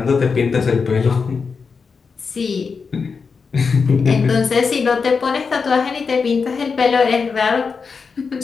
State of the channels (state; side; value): quieter; right; 5.2 dB